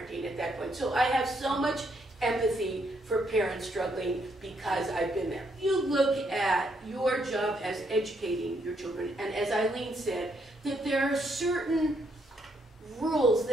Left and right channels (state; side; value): normal; both; correlation 0.74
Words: at that point. So I have so much empathy for parents struggling because I've been there. You look at your job as educating your children, and as Eileen said, that there are certain rules